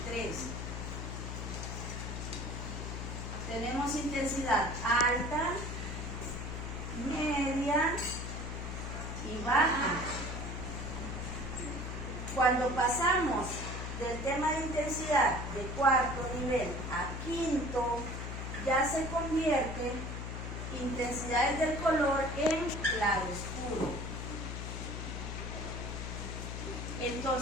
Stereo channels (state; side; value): noise; left; hum, 5 dB below the sound